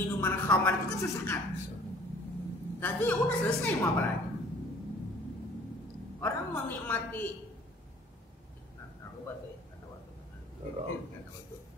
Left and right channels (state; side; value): normal; both; correlation 0.52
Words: khamar itu kan sesaat. Tapi ya udah selesai, mau apa lagi? Orang menikmati aku baca ya, nggak tahu.